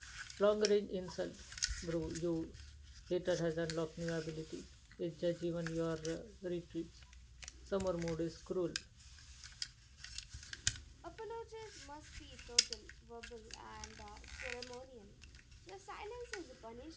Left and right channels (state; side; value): identical; both; correlation 1.00